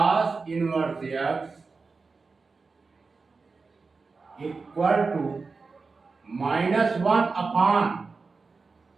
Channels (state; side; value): quieter; left; 4.3 dB